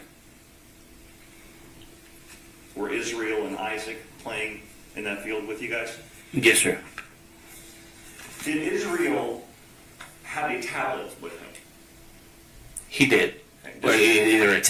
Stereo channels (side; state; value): both; identical; correlation 1.00